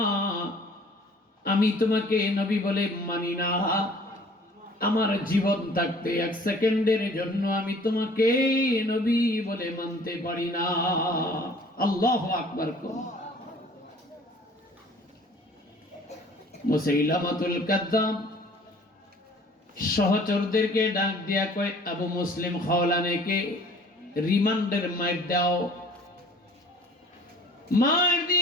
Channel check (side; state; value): both; normal; correlation 0.51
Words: আমি তোমাকে নবী বলে মানি না। আমার জীবন থাকতে এক সেকেন্ডের জন্য আমি তোমাকে নবী বলে মানতে পারি না। আল্লাহু আকবার। মুসাইলামাতুল কাযযাব সহচরদেরকে ডাক দিয়া কয়, আবু মুসলিম খাওলানীকে রিমান্ডের মার দাও। মার